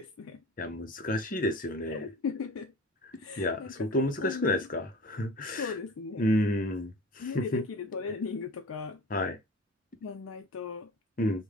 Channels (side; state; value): both; normal; correlation 0.39